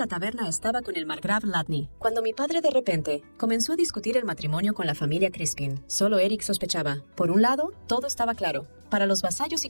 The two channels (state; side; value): inverted; both; correlation -1.00